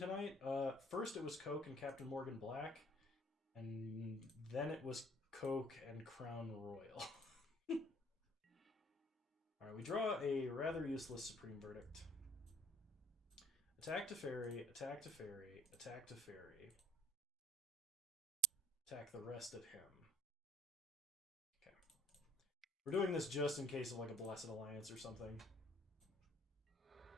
First it was Coke and Captain Morgan Black, and then it was Coke and Crown Royal. Alright, we draw a rather useless Supreme Verdict. Attack to Fairy, attack to Fairy, attack to Fairy. Attack the rest of him. Okay. We're doing this just in case of like a Blessed Alliance or something.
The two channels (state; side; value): normal; both; correlation 0.58